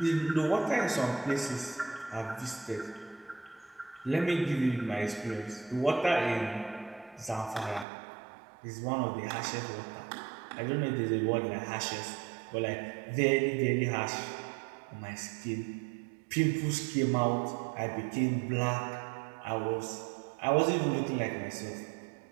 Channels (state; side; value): drops out; left; at 7.9 s